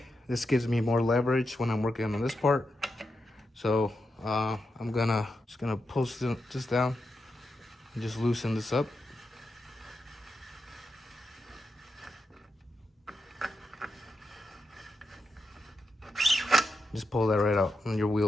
This gives me more leverage when I'm working on this part. So I'm just gonna pull this down and just loosen this up. Just pull that right out and your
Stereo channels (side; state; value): both; normal; correlation 0.87